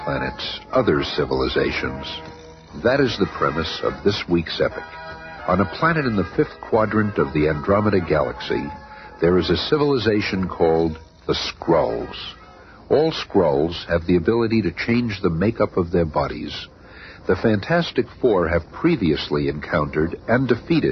planets, other civilizations. That is the premise of this week's epic. On a planet in the fifth quadrant of the Andromeda Galaxy, there is a civilization called the Skrulls. All Skrulls have the ability to change the makeup of their bodies. The Fantastic Four have previously encountered and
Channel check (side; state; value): both; identical; correlation 1.00